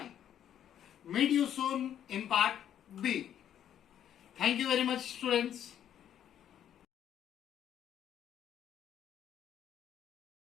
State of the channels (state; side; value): quieter; right; 10.1 dB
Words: Meet you soon in part B. Thank you very much, students.